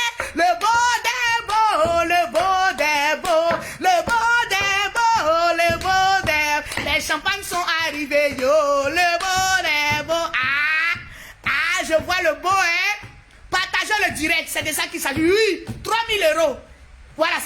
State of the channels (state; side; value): identical; both; correlation 1.00